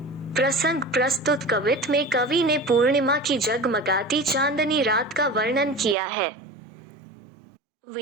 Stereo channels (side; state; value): left; drops out; at 6.0 s